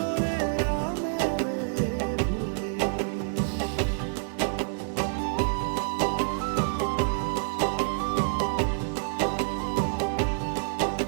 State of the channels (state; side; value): silent; left; 60 dB below the other